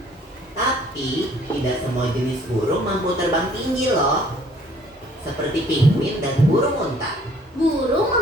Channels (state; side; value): normal; both; correlation 0.58